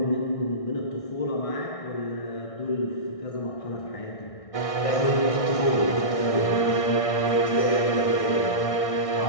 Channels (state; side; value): late; right; 1.6 ms